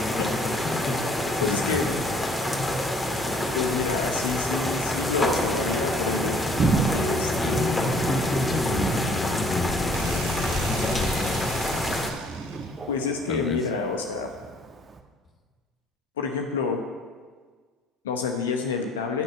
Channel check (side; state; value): both; normal; correlation 0.58